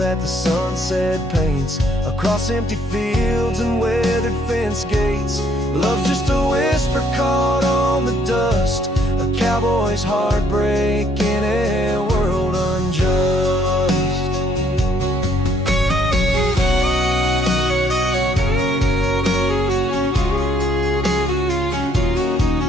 the sunset paints across empty fields and weathered fence gates. Love's just a whisper caught on the dust, a cowboy's heartbreak in a world unjust.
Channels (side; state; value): both; normal; correlation 0.66